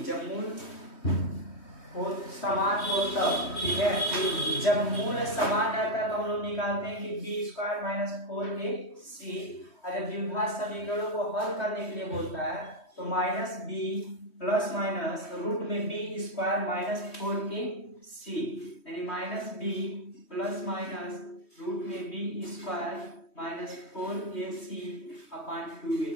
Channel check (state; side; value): late; right; 3.1 ms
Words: जब मूल हो समान हो तब, ठीक है, जब मूल समान रहता है तो हम लोग निकालते हैं कि बी स्क्वायर माइनस 4ac। अगर द्विघात समीकरणों को हल करने के लिए बोलता है तो minus b plus minus root में बी स्क्वायर माइनस 4ac, यानी minus b plus minus root में b square minus 4ac upon 2a।